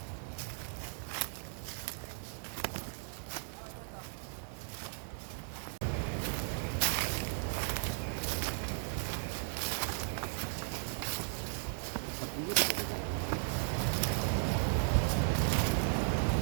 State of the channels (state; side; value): silent; left; digital silence